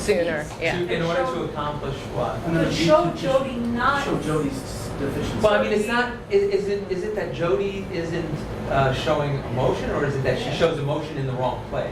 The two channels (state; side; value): identical; both; correlation 1.00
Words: piece. yeah. In order to accomplish what? To show Jody not. Show Jody's deficiency. Well, I mean, it's not. Is it that Jody isn't showing emotion, or is it that she shows emotion in the wrong place,